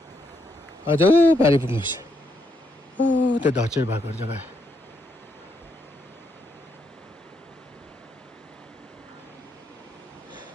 अझ पारि पुग्नुहोस् ओ त्यो धचेर भएको जग्गा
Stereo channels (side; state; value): both; normal; correlation 0.77